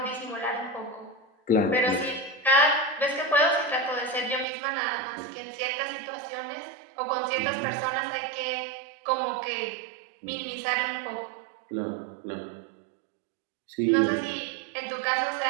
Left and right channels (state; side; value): drops out; left; at 4.5 s